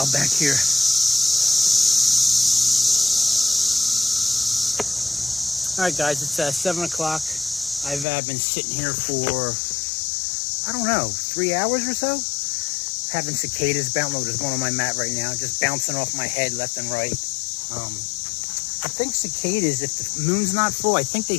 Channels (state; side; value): drops out; right; at 8.1 s